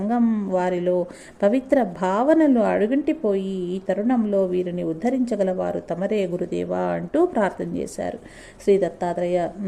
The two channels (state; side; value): identical; both; correlation 1.00